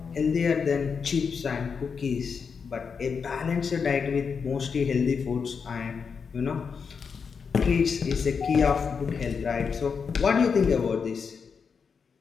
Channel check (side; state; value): right; quieter; 5.9 dB